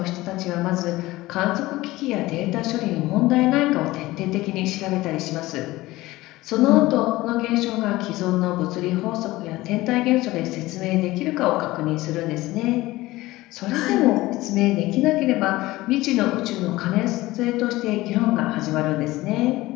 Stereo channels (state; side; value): quieter; right; 18.5 dB